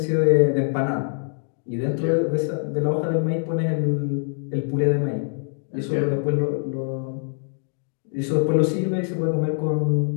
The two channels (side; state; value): right; silent; digital silence